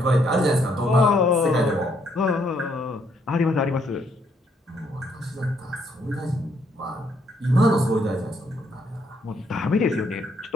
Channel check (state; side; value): normal; both; correlation 0.71